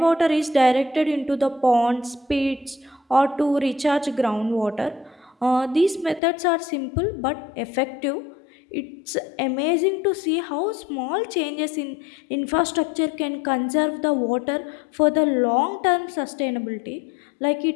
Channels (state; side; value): drops out; right; at 6.2 s